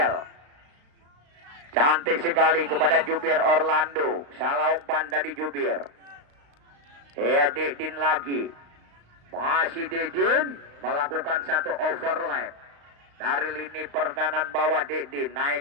Cantik sekali kepada Jubir Orlando. Salah umpan tadi Jubir. Dedin lagi. Masih Dedin melakukan satu overlap. Dari lini pertahanan bawah Dedin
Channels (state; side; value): late; left; 35 ms